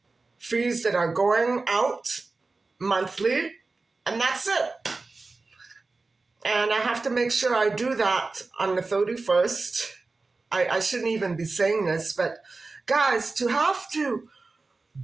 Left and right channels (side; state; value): left; quieter; 3.7 dB